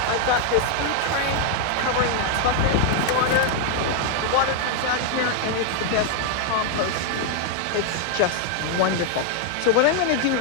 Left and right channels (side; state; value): both; different; correlation 0.00